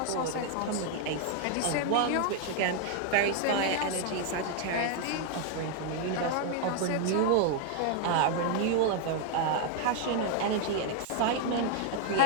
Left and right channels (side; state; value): both; different; correlation 0.00